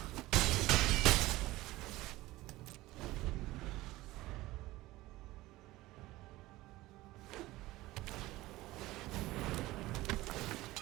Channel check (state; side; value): quieter; left; 18.3 dB